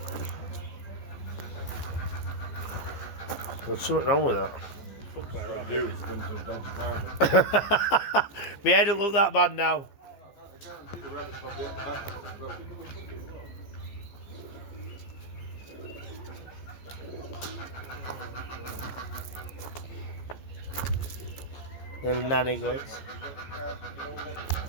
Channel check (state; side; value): late; right; 14 ms